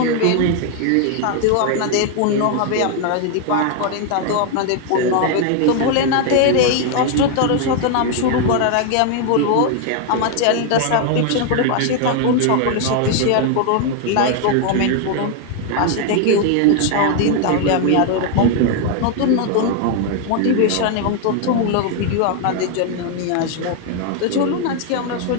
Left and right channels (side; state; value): both; different; correlation 0.00